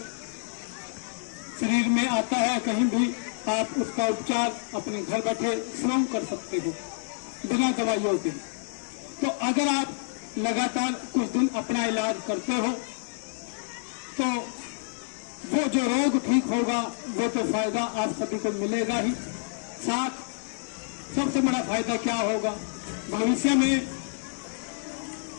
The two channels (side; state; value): right; silent; digital silence